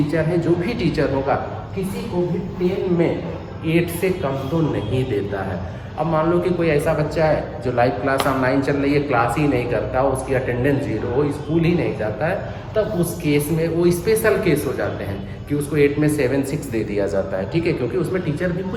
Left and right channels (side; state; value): both; identical; correlation 1.00